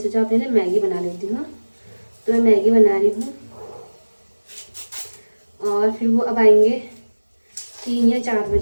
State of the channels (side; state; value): both; inverted; correlation -1.00